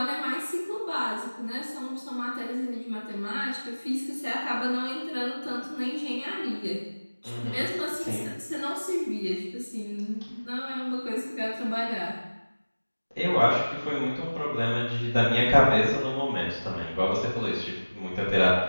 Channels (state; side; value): inverted; both; correlation -1.00